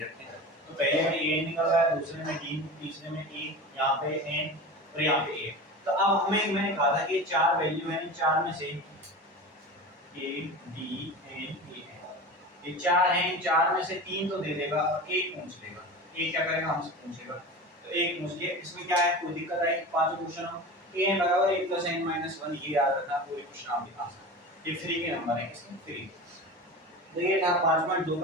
रखे हैं तो पहले में an निकल रहा है दूसरे में d तीसरे में a यहां पे n और यहां पे a तो अब हमें मैंने कहा था कि चार वैल्यू है इन चार में से a d n a ये चार हैं इन चार में से तीन तो दे देगा और एक पूछ लेगा एक क्या करेगा हमसे पूछेगा तो एक पूछ लिया इसमें क्या है कोई दिक्कत आई पांचों क्वेश्चन हो a बराबर 1 + n - 1 ये याद रखना पूरे क्वेश्चन आप लिखा सकते ये फ्री के नंबर है इसमें फ्री तो ये था 5.2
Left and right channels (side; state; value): both; normal; correlation 0.31